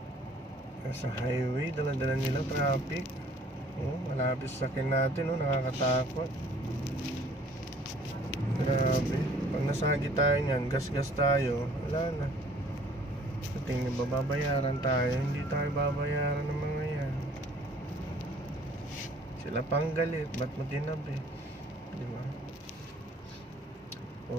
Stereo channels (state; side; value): normal; both; correlation 0.55